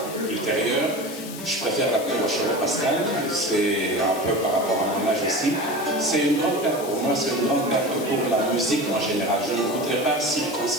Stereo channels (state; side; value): noise; left; hiss, 13 dB below the sound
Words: ultérieure. Je préfère l'appeler Rochereau Pascal, c'est un peu par rapport à mon âge aussi. C'est une grande perte pour moi, c'est une grande perte pour la musique en général. Je ne voudrais pas